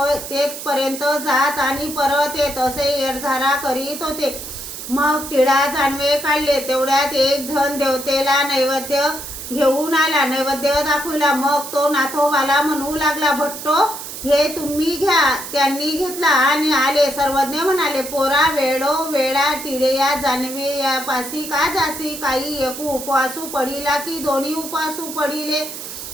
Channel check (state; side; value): noise; right; hiss, 9 dB below the sound